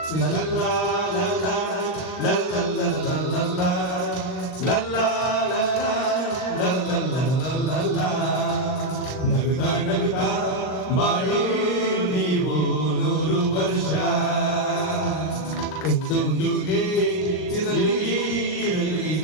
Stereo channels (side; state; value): right; late; 39 ms